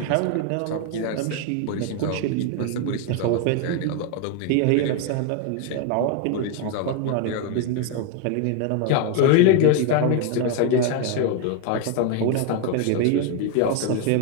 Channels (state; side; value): different; both; correlation 0.01